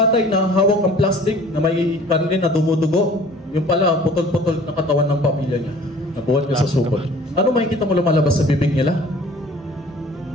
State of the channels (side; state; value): both; normal; correlation 0.49